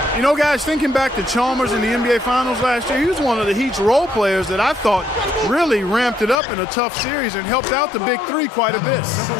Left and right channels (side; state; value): right; drops out; at 6.4 s